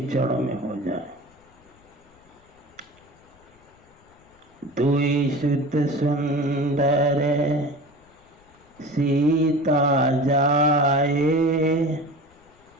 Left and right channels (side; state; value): left; noise; rumble, 30 dB below the sound